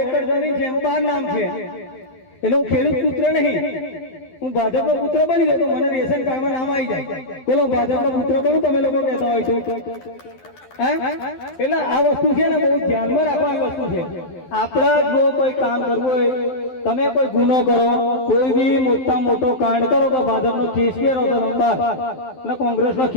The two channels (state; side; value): late; right; 12 ms